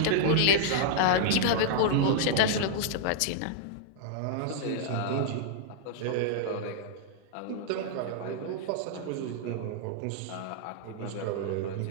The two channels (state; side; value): different; both; correlation -0.02